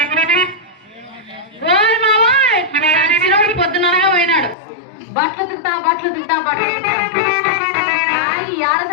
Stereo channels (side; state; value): right; drops out; at 4.5 s